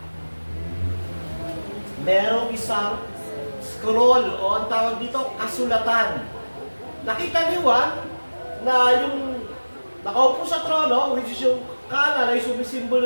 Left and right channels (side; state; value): both; inverted; correlation -1.00